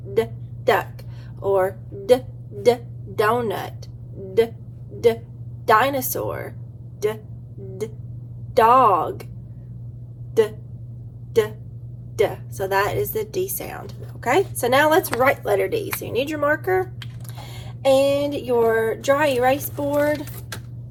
duck, or donut, dinosaur, dog, so that is the D sound. Okay, so now let's write letter D. So you need your marker and your dry erase board,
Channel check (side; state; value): both; identical; correlation 1.00